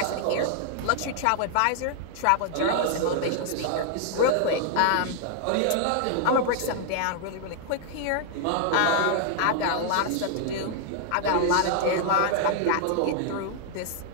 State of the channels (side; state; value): both; different; correlation 0.00